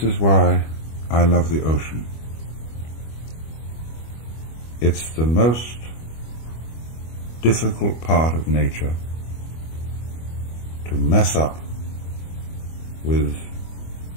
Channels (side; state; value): right; late; 25 ms